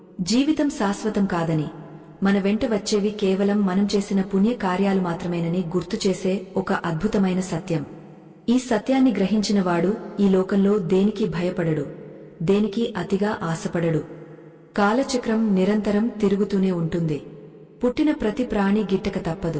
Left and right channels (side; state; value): both; identical; correlation 1.00